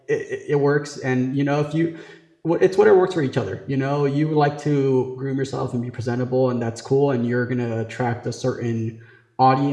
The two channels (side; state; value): both; identical; correlation 1.00